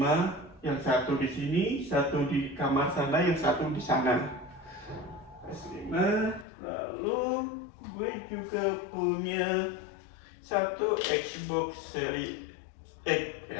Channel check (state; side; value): drops out; right; at 6.5 s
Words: yang satu di sini, satu di kamar sana, yang satu di sana. PS5, lalu gue juga punya satu Xbox Series X,